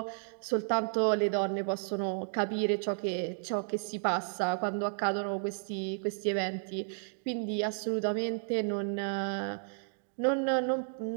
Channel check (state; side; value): silent; left; digital silence